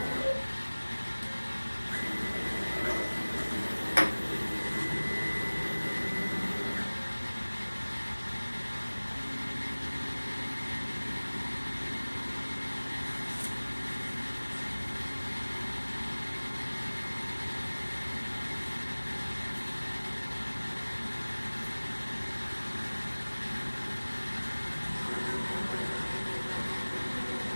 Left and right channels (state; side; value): inverted; both; correlation -1.00